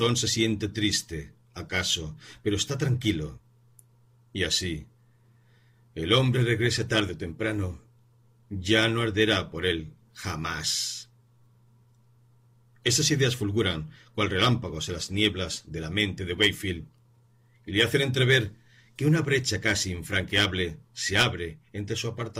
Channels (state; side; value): identical; both; correlation 1.00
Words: se siente triste, acaso, pero está tranquilo. Y así, el hombre regrese tarde o temprano, ya no arderá por él jamás. Esas ideas fulguran cual relámpagos en las nieblas de la mente de Wakefield y le hacen entrever que una brecha casi infranqueable se abre entre su